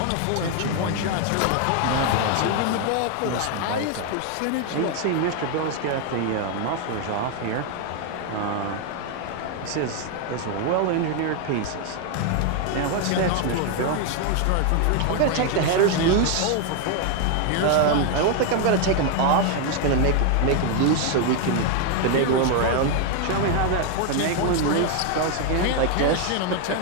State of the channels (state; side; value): different; both; correlation 0.01